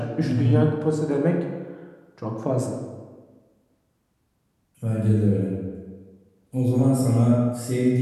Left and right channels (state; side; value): identical; both; correlation 1.00